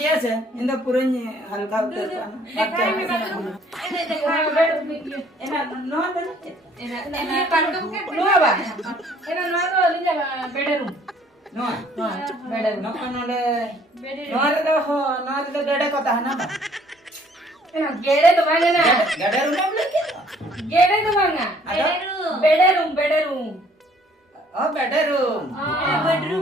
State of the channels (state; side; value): normal; both; correlation 0.60